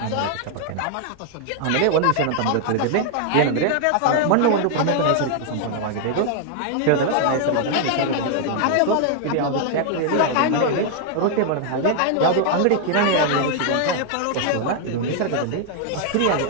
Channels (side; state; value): both; different; correlation 0.00